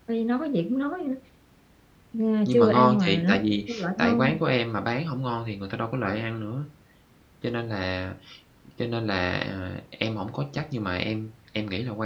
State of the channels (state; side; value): identical; both; correlation 1.00